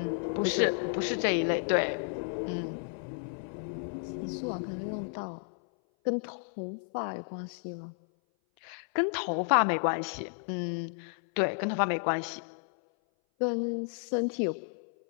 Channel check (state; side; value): silent; right; 56 dB below the other